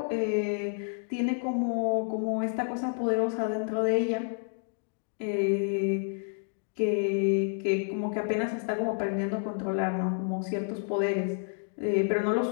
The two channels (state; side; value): silent; right; digital silence